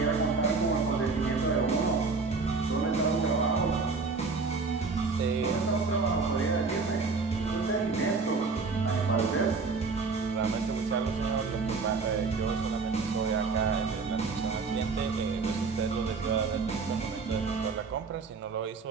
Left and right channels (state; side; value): quieter; left; 4.5 dB